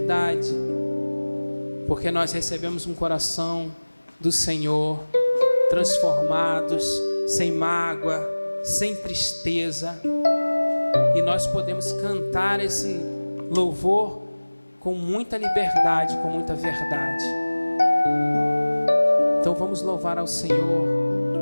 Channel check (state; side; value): inverted; both; correlation -1.00